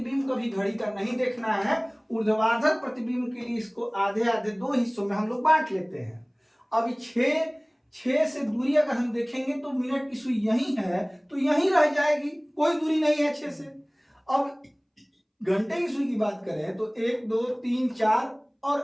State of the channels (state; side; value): identical; both; correlation 1.00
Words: कभी घड़ी का नहीं देखना है। ऊर्ध्वाधर प्रतिबिंब के लिए इसको आधे आधे 2 हिस्सों में हम लोग बांट लेते हैं। अब 6 से दूरी अगर हम देखेंगे तो मिनट की सुई यही है, तो यही रह जाएगी, कोई दूरी नहीं है 6 से। अब घंटे की सुई की बात करें तो 1, 2, 3, 4 और